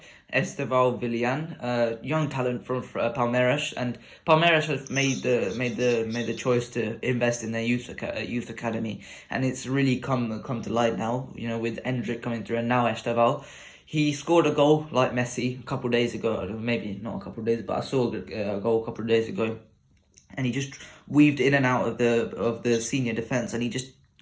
Esteval Villan, young talent from Palmeiras, and Palmeiras have made the choice to invest in their youth academy, and it's really come to light now. With Endrick coming through, and now Esteval. He scored a goal like Messi a couple of days ago, maybe not a couple of days, but I saw a goal a couple of days ago, and he just weaved in and out of the senior defense, and he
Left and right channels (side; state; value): both; identical; correlation 1.00